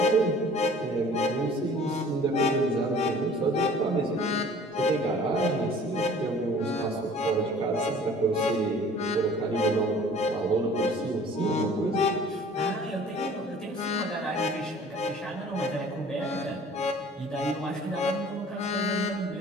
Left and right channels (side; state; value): both; normal; correlation 0.49